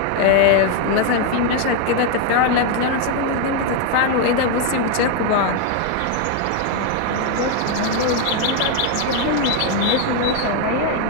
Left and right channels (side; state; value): both; different; correlation 0.01